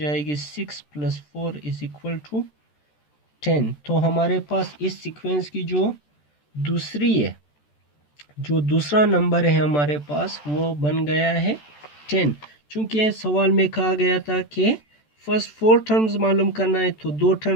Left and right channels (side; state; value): right; late; 14 ms